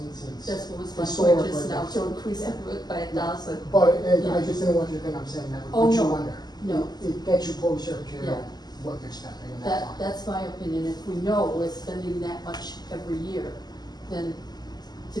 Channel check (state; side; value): late; right; 0.20 ms